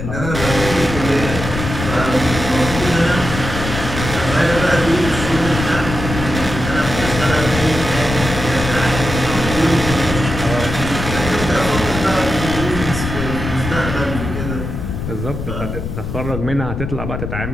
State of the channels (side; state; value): left; noise; rumble, 5 dB below the sound